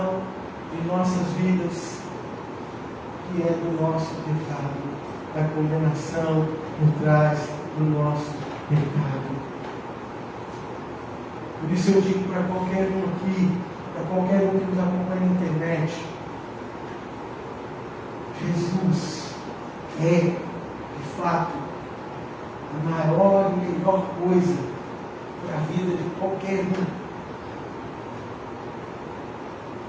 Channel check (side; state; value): both; identical; correlation 1.00